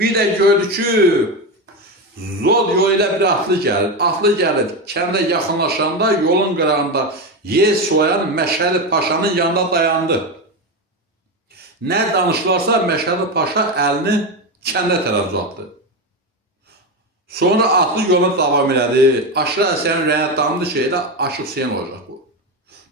də gördü ki, Zod yolu ilə bir atlı gəlir. Atlı gəlir, kəndə yaxınlaşanda yolun qırağında yer soyan Məşədi Paşanın yanında dayandı. Nə danışılarsa Məşədi Paşa əlini kəndə tərəf uzatdı. Sonra atlı yoluna davam elədi. Aşıq Ələsgərin ürəyinə damdı ki, elə Aşıq Hüseyin olacaq bu.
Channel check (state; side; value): normal; both; correlation 0.15